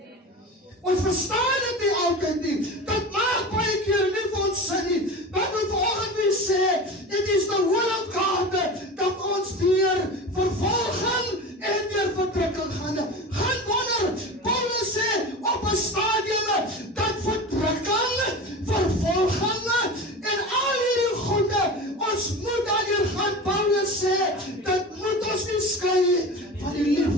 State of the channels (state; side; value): normal; both; correlation 0.31